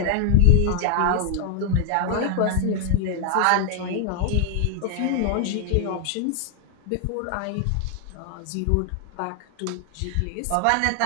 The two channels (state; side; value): different; both; correlation 0.00